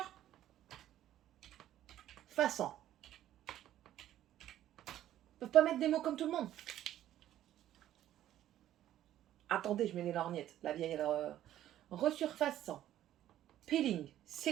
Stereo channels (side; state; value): left; quieter; 12.5 dB